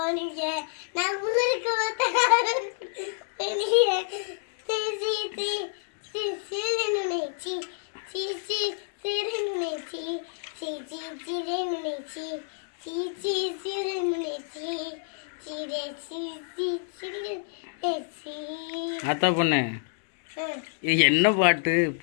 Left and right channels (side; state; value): right; silent; digital silence